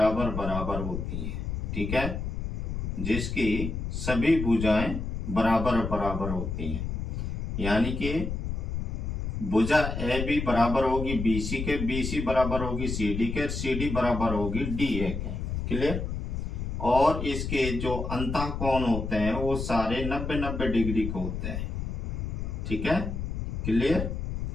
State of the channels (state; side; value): noise; left; rumble, 3 dB below the sound